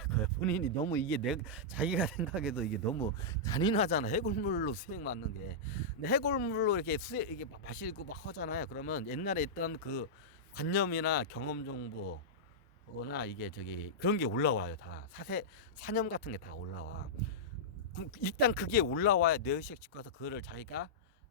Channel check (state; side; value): normal; both; correlation -0.11